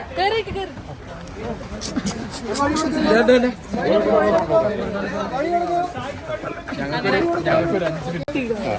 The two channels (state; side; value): identical; both; correlation 1.00